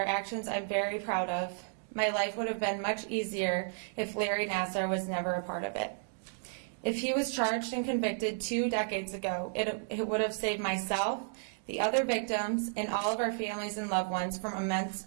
actions I'm very proud of, my life would have been much easier if Larry Nassar was never a part of it. If he was charged and convicted 2 decades ago, it would have saved myself, the other victims, and all of our families and loved ones from immense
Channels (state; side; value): silent; left; digital silence